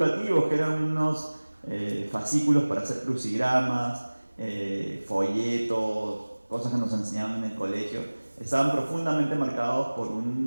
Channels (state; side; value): inverted; both; correlation -1.00